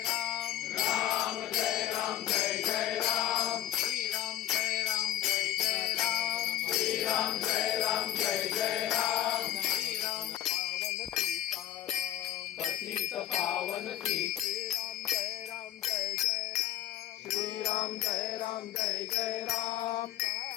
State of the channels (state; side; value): quieter; right; 12.4 dB